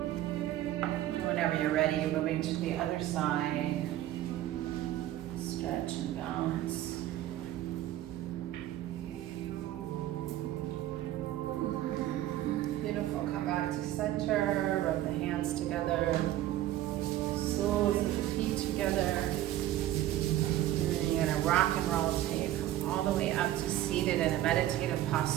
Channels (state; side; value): quieter; left; 13.6 dB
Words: Whenever you're ready, moving to the other side. Stretch and balance. Beautiful. Come back to center. Rub the hands together. Soles of the feet together. And then you're going to rock and roll until you come all the way up to seated in a meditative